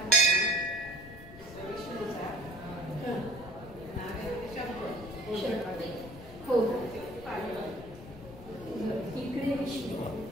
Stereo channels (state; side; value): noise; left; rumble, 16 dB below the sound